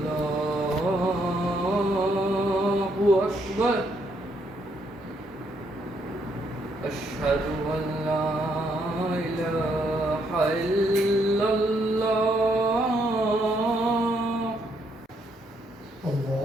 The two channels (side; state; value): both; normal; correlation 0.73